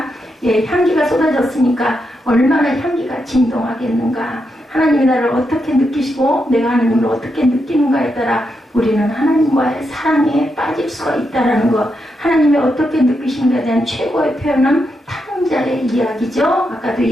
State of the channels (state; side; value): normal; both; correlation 0.83